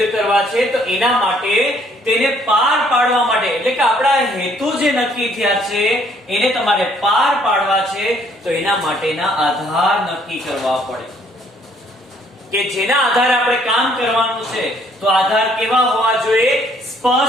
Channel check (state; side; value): normal; both; correlation 0.64